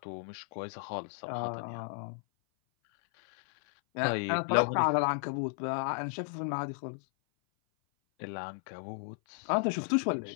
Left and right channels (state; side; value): silent; right; 55 dB below the other